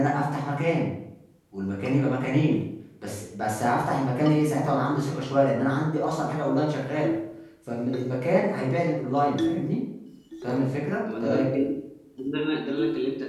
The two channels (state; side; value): identical; both; correlation 1.00